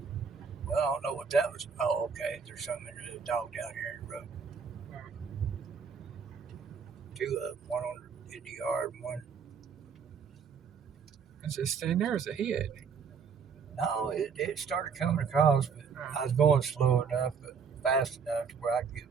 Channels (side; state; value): left; quieter; 6.1 dB